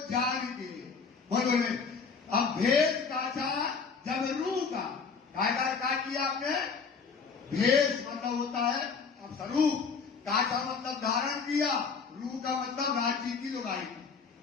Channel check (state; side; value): quieter; right; 5.4 dB